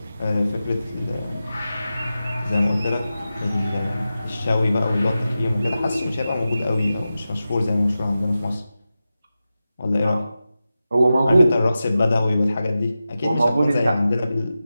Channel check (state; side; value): inverted; both; correlation -0.93